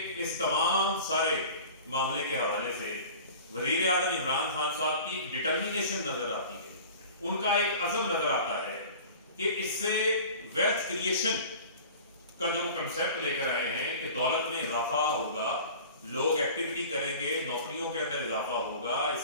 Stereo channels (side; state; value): both; inverted; correlation -0.41